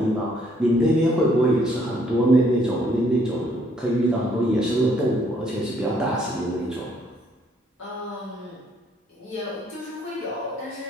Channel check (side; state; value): both; normal; correlation 0.67